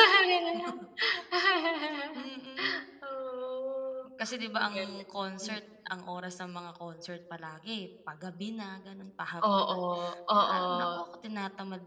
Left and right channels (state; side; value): identical; both; correlation 1.00